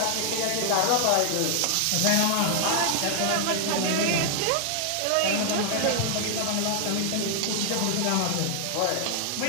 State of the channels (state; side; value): different; both; correlation 0.00